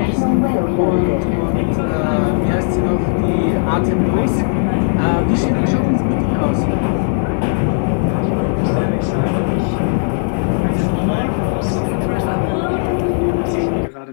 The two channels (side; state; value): right; silent; digital silence